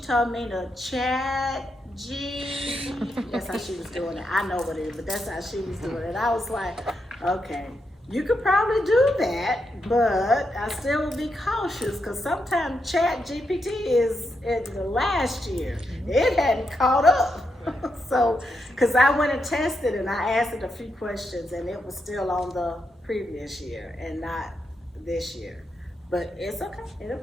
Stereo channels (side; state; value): both; normal; correlation 0.83